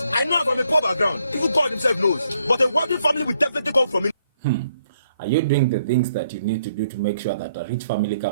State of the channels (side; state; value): both; inverted; correlation -0.71